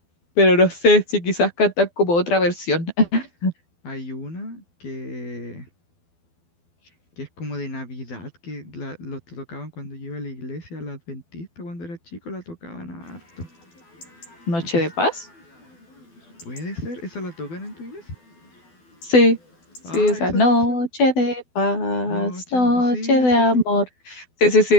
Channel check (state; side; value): late; right; 12 ms